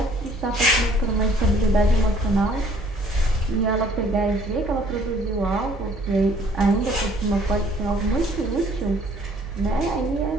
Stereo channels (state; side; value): normal; both; correlation 0.58